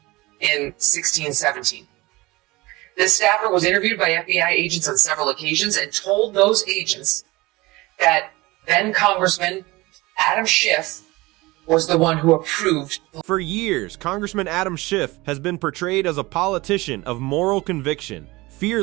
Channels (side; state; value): left; quieter; 21.4 dB